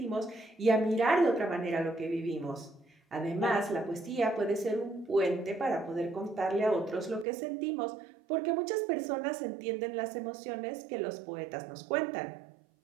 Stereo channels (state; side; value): drops out; left; at 7.2 s